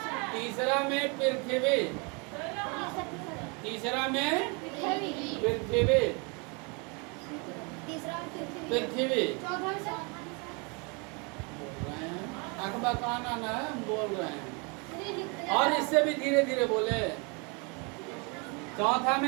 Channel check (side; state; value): left; quieter; 32.1 dB